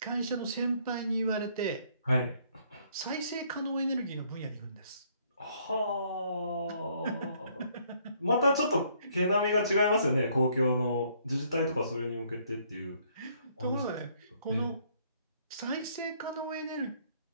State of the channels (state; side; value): inverted; both; correlation -0.66